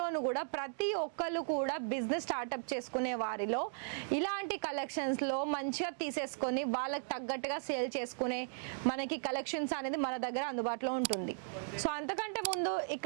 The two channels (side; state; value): left; silent; digital silence